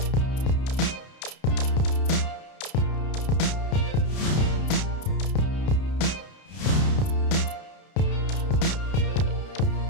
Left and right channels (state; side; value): late; right; 31 ms